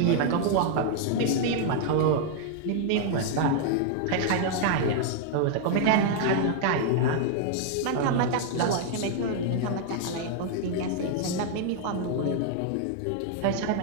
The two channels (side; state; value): both; different; correlation 0.00